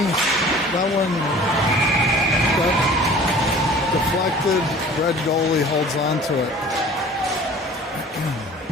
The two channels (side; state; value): both; normal; correlation 0.46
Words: That one got deflected. Red goalie holds on to it.